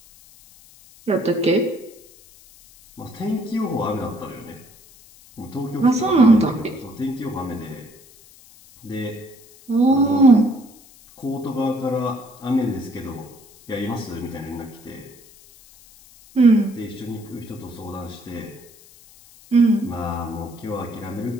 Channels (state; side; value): noise; left; hiss, 24 dB below the sound